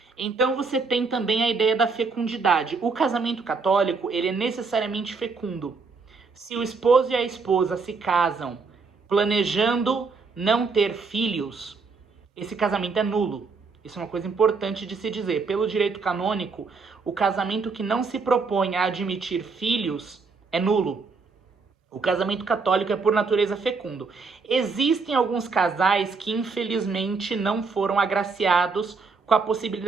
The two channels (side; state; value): left; quieter; 4.5 dB